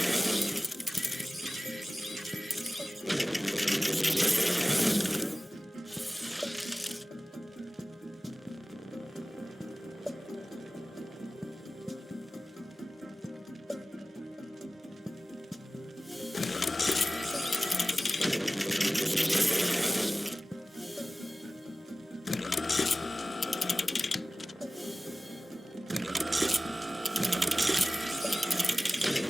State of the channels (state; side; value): normal; both; correlation 0.97